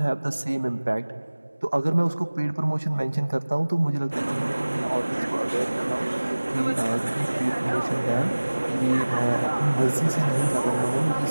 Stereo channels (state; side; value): inverted; both; correlation -1.00